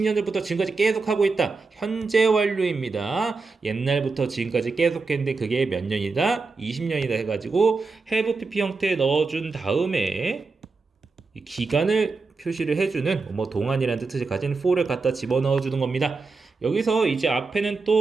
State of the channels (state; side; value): quieter; left; 4.1 dB